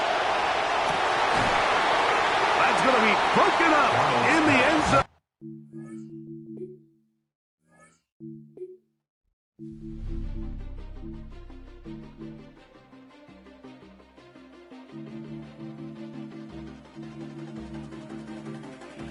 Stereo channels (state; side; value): identical; both; correlation 1.00